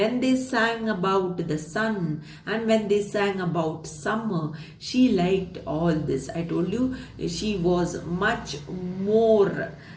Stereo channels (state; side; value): identical; both; correlation 1.00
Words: they sang about the sun and when they sang about summer, she liked all this. I told you, she was much more